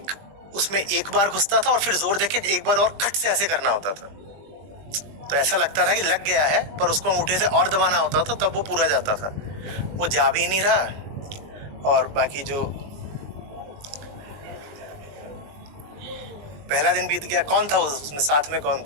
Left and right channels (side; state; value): left; late; 20 ms